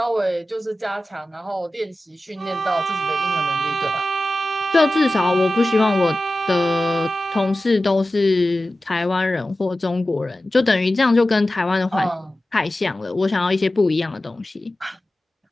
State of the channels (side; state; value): both; normal; correlation 0.95